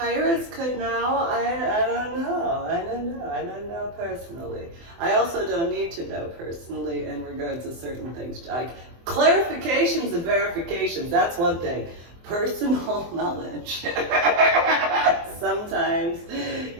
could know, I don't know personally. I also don't need to know personally in regards to certain things. Like, clarifications and verifications, that's one thing. Personal knowledge. Sometimes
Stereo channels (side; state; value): left; late; 24 ms